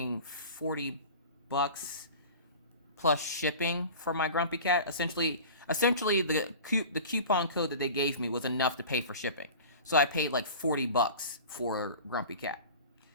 $40 plus shipping for my Grumpy Cat, essentially the coupon code that they gave me was enough to pay for shipping. So I paid like $40 for Grumpy Cat.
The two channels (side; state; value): both; inverted; correlation -0.37